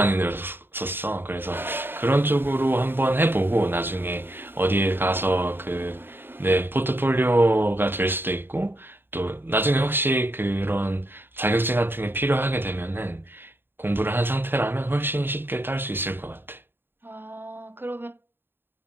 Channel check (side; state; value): left; late; 0.10 ms